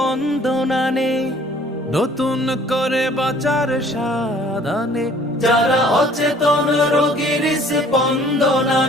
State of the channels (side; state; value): both; normal; correlation 0.55